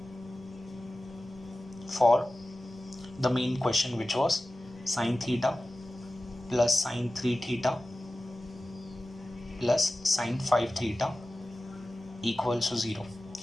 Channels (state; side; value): normal; both; correlation 0.96